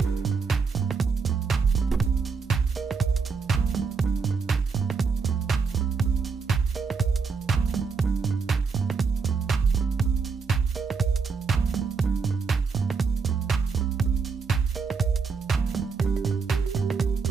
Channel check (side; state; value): left; quieter; 5.1 dB